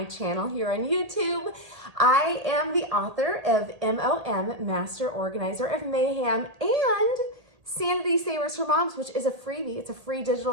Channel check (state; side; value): late; left; 1.8 ms